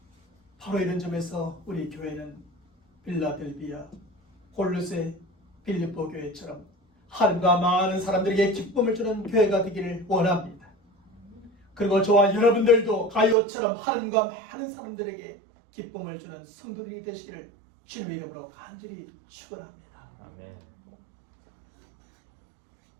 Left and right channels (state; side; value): drops out; left; at 13.4 s